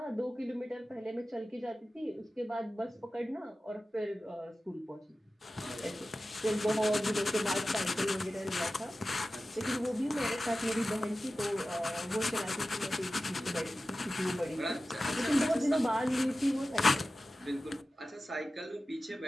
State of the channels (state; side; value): normal; both; correlation 0.95